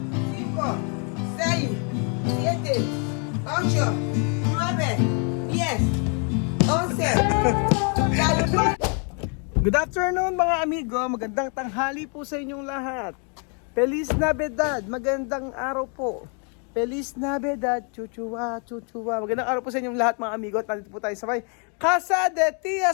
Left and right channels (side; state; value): right; quieter; 39.0 dB